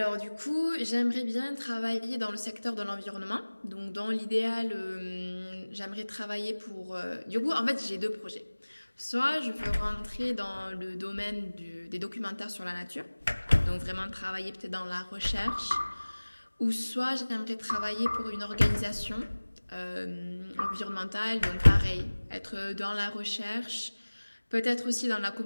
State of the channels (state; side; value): inverted; both; correlation -1.00